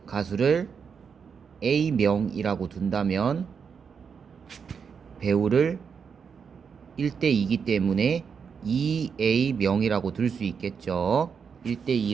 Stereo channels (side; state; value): left; quieter; 6.4 dB